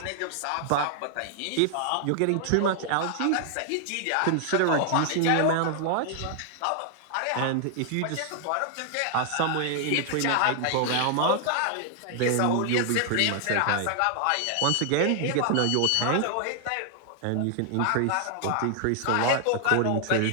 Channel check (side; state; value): both; different; correlation 0.00